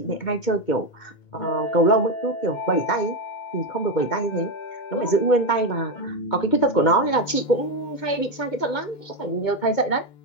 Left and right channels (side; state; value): right; late; 2.2 ms